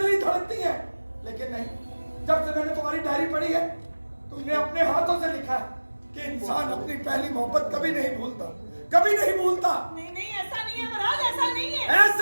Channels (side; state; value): both; inverted; correlation -1.00